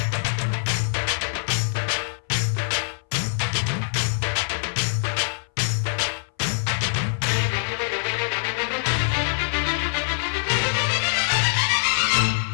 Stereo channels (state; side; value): silent; right; 59 dB below the other